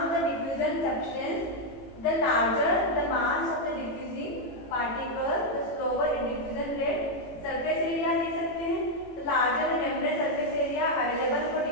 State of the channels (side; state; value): right; late; 18 ms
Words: of the diffusion substance, the larger the mass of the diffusing particle, the slower in diffusion rate. Surface area ले सकते हैं, the larger the membrane surface area available for